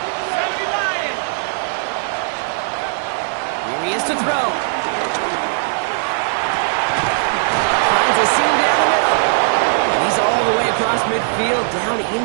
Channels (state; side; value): silent; left; digital silence